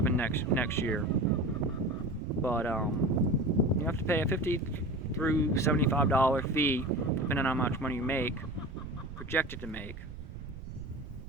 next year. But you have to pay a $50 through $75 fee, depending on how much money you make, projected to make.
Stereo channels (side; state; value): right; noise; rumble, 12 dB below the sound